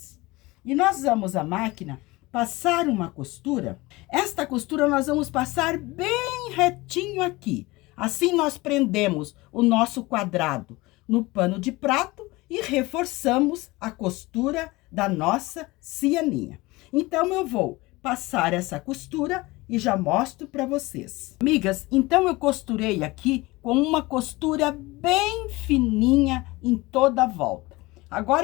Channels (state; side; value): quieter; right; 21.6 dB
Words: E nós vamos à máquina passar uma costura. Esta costura nós vamos passar bem retinho aqui. Assim, nós prendemos o nosso quadrado no pano de prato e reforçamos a costura da nossa cianinha. Então, eu vou passar essa costura e já mostro para vocês. Amigas, então eu costurei aqui com uma costura bem fininha em toda a volta.